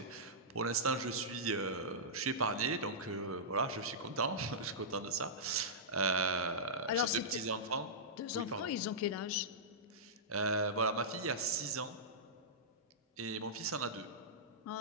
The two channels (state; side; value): normal; both; correlation -0.15